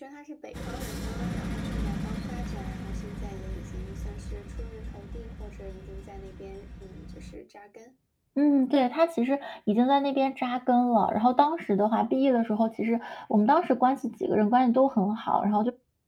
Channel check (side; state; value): both; identical; correlation 1.00